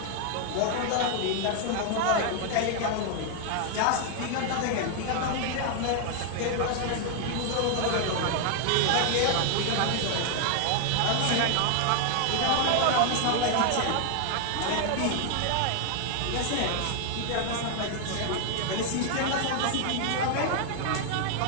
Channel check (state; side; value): different; both; correlation 0.00